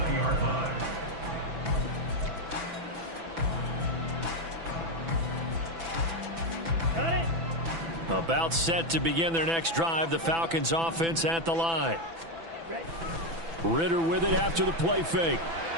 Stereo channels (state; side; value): late; left; 6.0 ms